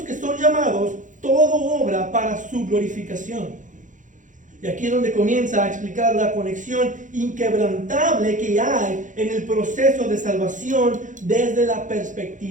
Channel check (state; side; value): late; left; 0.37 ms